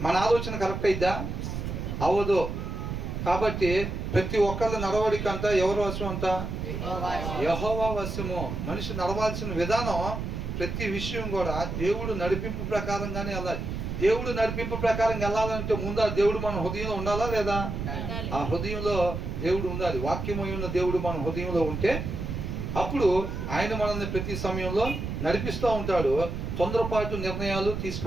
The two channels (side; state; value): right; noise; rumble, 4 dB below the sound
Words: మన ఆలోచన కరెక్ట్ అయిద్దా? అవ్వదు. కాబట్టి ప్రతి ఒక్కళ్ళ నడవడిక అంతా ఎవరు వశం అంట? యెహోవా వశము. మనిషి నడవాల్సిన విధానం ప్రతి విషయం కూడా దేవుడు నడిపింపు ప్రకారంగానే వెళ్ళాలి. దేవుడు నడిపింపు ప్రకారం వెళ్ళాలంటే ముందు ఆ దేవుడు మన హృదయంలో ఉండాలా లేదా? ఆ హృదయంలో దేవుడు ఉండాలి. వాక్యమై ఉన్న దేవుడు మన హృదయంలో ఉంటే అప్పుడు ఆయన మనల్ని ప్రతి సమయంలో నడిపిస్తూ ఉంటాడు. తొందరపాటు నిర్ణయాలు